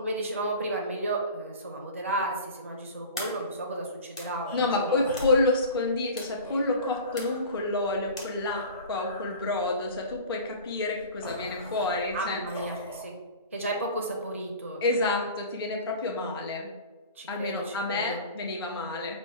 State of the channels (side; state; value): both; inverted; correlation -0.38